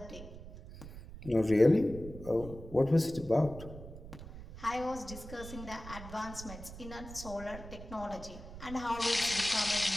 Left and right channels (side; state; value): right; noise; rumble, 13 dB below the sound